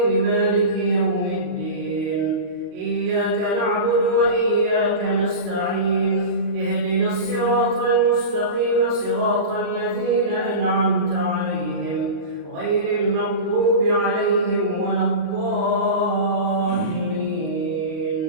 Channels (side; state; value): left; late; 39 ms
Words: مالك يوم الدين إياك نعبد وإياك نستعين اهدنا الصراط المستقيم صراط الذين أنعمت عليهم غير المغضوب عليهم ولا الضالين